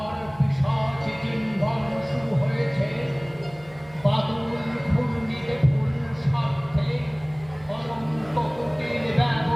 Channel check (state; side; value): noise; right; hum, 23 dB below the sound